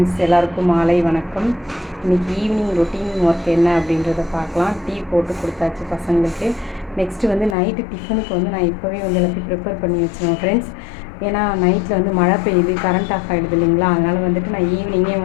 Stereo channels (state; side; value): drops out; right; at 7.6 s